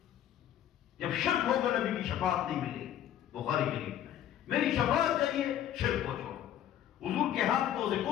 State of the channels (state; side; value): quieter; right; 10.9 dB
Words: جب شرک ہوگا نبی کی شفاعت نہیں ملے گی۔ بخاری شریف میں میری شفاعت چاہیے، شرک کو چھوڑو۔ حضور کے ہاتھ کو